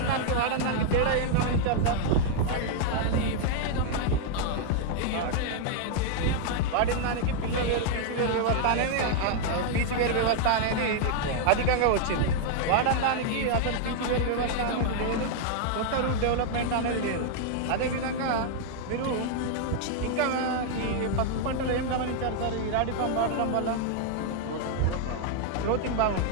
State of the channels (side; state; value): both; different; correlation 0.00